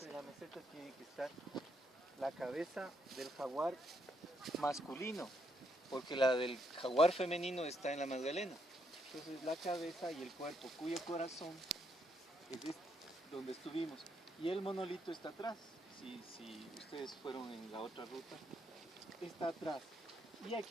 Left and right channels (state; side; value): normal; both; correlation 0.76